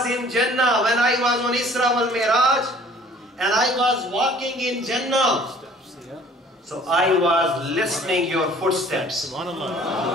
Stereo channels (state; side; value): normal; both; correlation 0.53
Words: in Jannah, when I was on Isra wal Miraj, and I was walking in Jannah, so I was listening your footsteps.